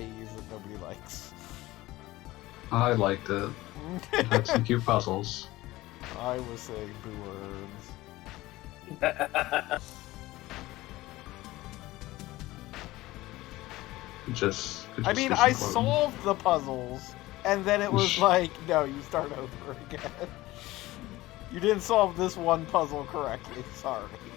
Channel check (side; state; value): right; quieter; 18.2 dB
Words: that nobody likes. I liked it. It had some cute puzzles. I was saying boo words. I mean, I solved the puzzles, and then it was like, no, you start over again. You didn't solve this one puzzle correctly. Sorry.